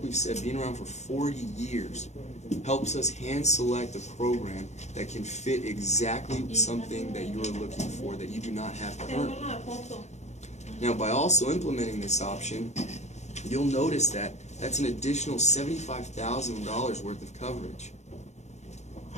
we've said, being around for 40 years helps us hand select a program that can fit exactly something that you're looking for that you do not have currently. Now, by also implementing this option, you'll notice that that's an additional $75,000 worth of coverage.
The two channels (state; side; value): late; right; 0.33 ms